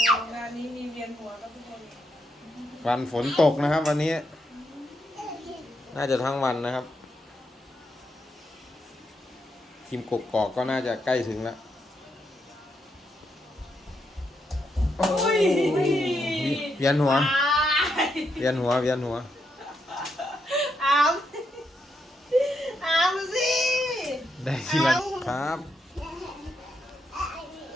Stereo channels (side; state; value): both; normal; correlation 0.80